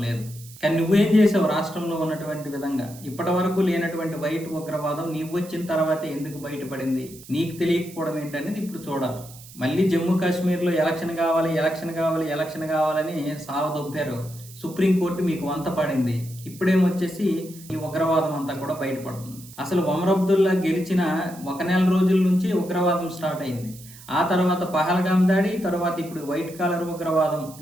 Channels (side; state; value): right; noise; hiss, 19 dB below the sound